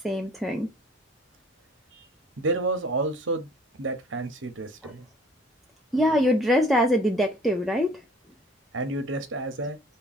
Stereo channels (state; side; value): normal; both; correlation 0.52